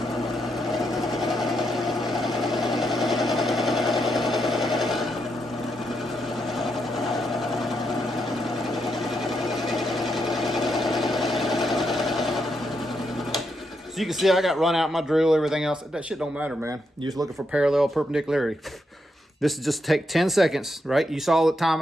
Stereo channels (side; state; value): both; normal; correlation 0.81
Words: So you can see I got run out my drill, everything else. That shit don't matter, man. You're just looking for parallel perpendicularity. This is just take 10 seconds, right? You saw the time